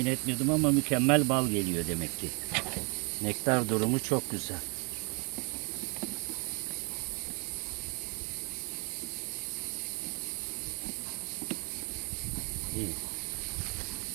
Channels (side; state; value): left; quieter; 32.6 dB